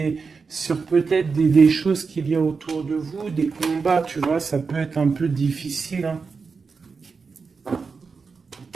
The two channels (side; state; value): left; quieter; 4.9 dB